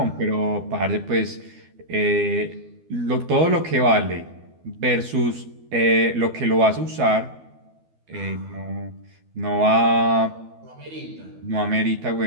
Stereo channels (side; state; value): left; late; 12 ms